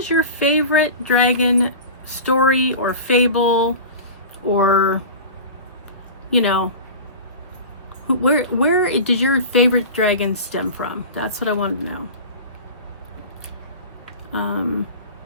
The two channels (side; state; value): both; inverted; correlation -0.33